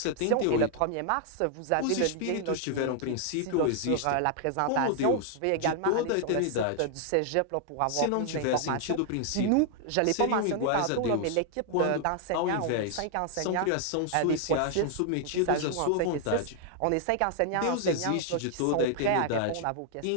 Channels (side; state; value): both; different; correlation 0.00